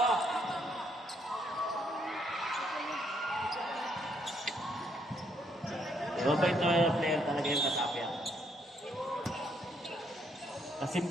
Mabait na player talaga yung Katapia. Kasi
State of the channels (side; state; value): both; normal; correlation 0.72